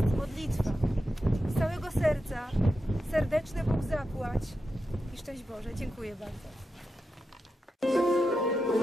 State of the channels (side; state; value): both; normal; correlation 0.89